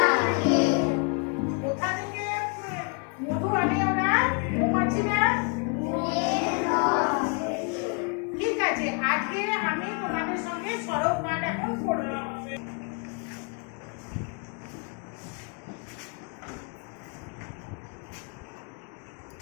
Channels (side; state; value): right; quieter; 38.1 dB